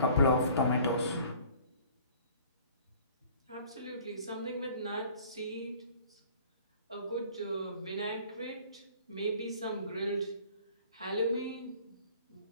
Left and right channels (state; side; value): inverted; both; correlation -0.51